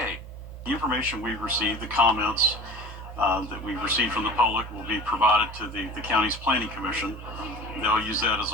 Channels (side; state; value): both; normal; correlation 0.39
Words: The information we've received, the comments that we've received from the public will be provided to the county's planning commission. They'll use that as